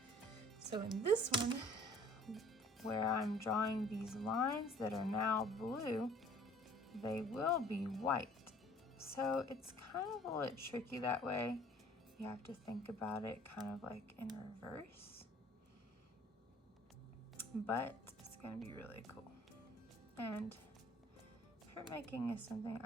So in this one, where I'm drawing these lines that are now blue, they will be white. So it's kind of a little tricky that way. You have to think about it kind of like in reverse. But it's gonna be really cool. And printmaking is something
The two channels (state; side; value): normal; both; correlation 0.53